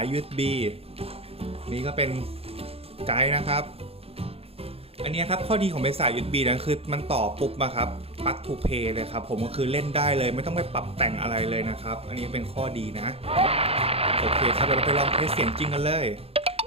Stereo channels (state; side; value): late; left; 0.28 ms